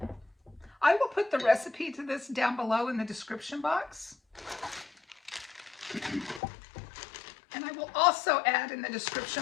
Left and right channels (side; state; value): right; drops out; at 6.4 s